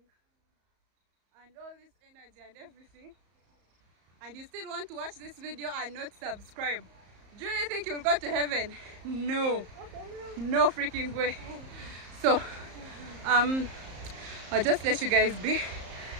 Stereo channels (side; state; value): left; late; 34 ms